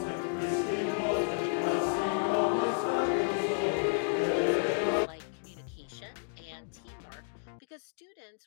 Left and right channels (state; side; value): silent; right; digital silence